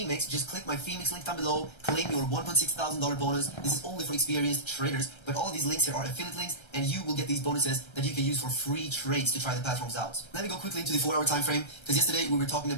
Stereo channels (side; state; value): right; late; 1.3 ms